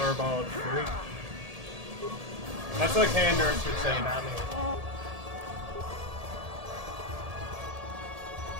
freak. That's what Canderous would say, not me.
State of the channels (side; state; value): left; late; 1.7 ms